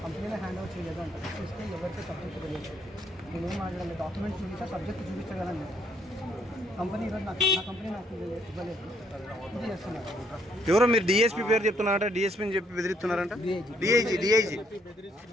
కంపెనీలో హ్యాండ్ ఓవర్ చేయలేదు అంటే చూస్తే ఎవరితో సబ్జెక్ట్ తెలియదు, నేనేం మాట్లాడాలి, డాక్యుమెంట్స్ చూపిస్తే సబ్జెక్ట్ చూపించగలను. కంపెనీ ఈరోజు నా కంపెనీ నాకు ఇవ్వలేదు, ఇది చేస్తున్నారు. ఎవరో మీరు డిఎస్పీ పేరు చెప్తున్నారంట, డిఎస్పీని చెప్పి బెదిరిస్తున్నారంట. డిఐజీ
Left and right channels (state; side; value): normal; both; correlation 0.69